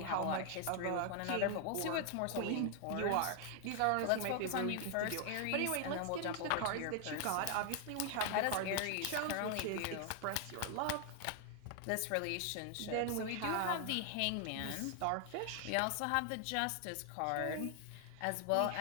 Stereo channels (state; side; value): different; both; correlation 0.00